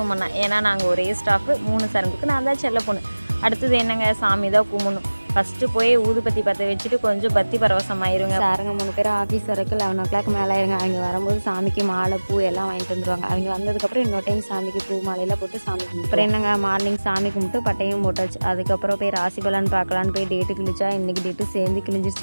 பண்ணேன். ஏன்னா நாங்கள் ஒரே ஸ்டாஃபு 3 சரங்குக்கு நான் தான் செல்ல பொண்ணு. அடுத்தது என்னங்க, சாமி தான் கும்பிடணும். ஃபஸ்ட்டு போய் ஊதுபத்தி பற்ற வச்சுட்டு கொஞ்சம் பத்தி பரவசமாயிருங்க. சாருங்க 3 பேர் ஆஃபீஸ் வரைக்கும் 11 o'clock மேலே ஆயிருங்க. அவங்க வரும்போது சாமிக்கு மாலை பூ எல்லாம் வாங்கிட்டு வந்துடுவாங்க. அவங்க வந்ததுக்கப்புறம் இன்னொரு டைம் சாமிக்கு பூ மாலையெல்லாம் போட்டு சாமி கும்பிட்டு அப்புறம் என்னங்க மார்னிங் சாமி கும்பிட்டு பட்டையும் போட்டாச்சு. அதுக்கப்புறம் போய் ராசி பலன் பார்க்கலான்னு போய் டேட்டு கிழிச்சா இன்றைக்கி டேட்டு சேர்ந்து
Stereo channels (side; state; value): both; inverted; correlation -1.00